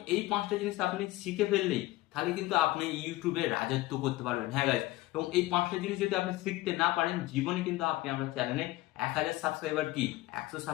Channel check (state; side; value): quieter; right; 18.5 dB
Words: এই 5টা জিনিস আপনি শিখে ফেললেই তাহলে কিন্তু আপনি ইউটিউবে রাজত্ব করতে পারবেন। হ্যাঁ গাইস, এবং এই 5টা জিনিস যদি আপনি শিখতে না পারেন, জীবনে কিন্তু আপনি আপনার চ্যানেলে 1000 সাবস্ক্রাইবার কি 100